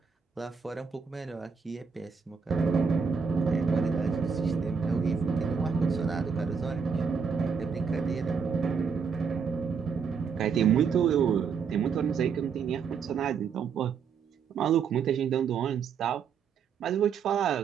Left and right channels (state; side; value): quieter; left; 6.1 dB